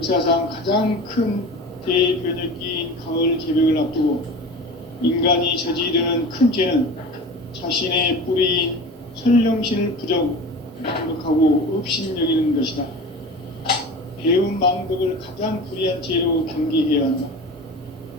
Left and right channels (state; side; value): normal; both; correlation 0.34